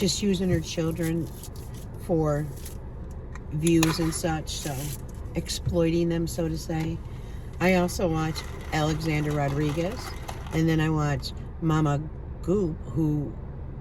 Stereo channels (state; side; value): identical; both; correlation 1.00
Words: using her children for views and such, so exploiting them, so to say. I also watch Alexander Rodriguez, and then I watch Mama Goop, who